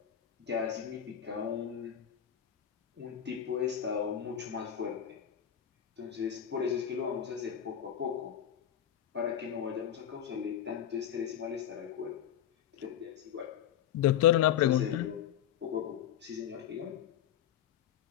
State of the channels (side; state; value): right; quieter; 10.0 dB